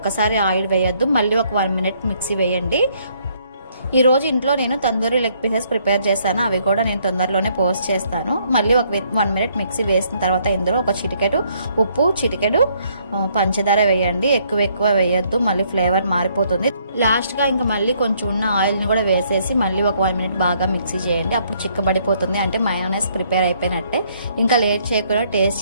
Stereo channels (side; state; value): both; inverted; correlation -0.68